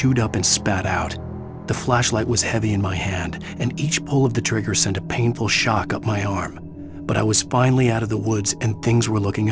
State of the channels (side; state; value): both; identical; correlation 1.00